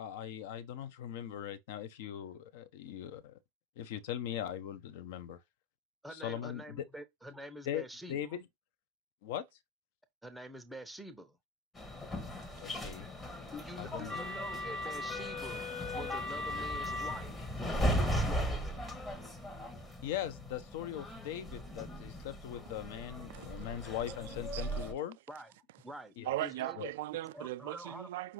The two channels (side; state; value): both; normal; correlation 0.36